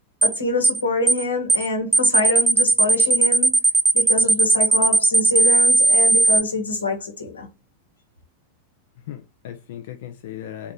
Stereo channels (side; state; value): both; normal; correlation 0.66